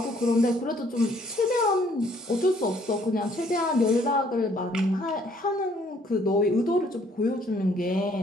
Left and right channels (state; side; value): normal; both; correlation 0.63